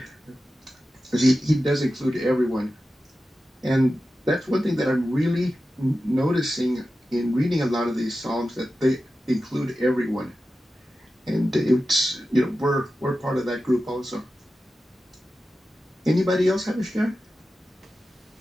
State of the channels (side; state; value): both; normal; correlation 0.93